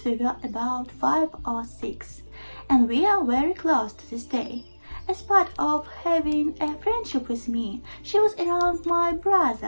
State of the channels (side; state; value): both; inverted; correlation -1.00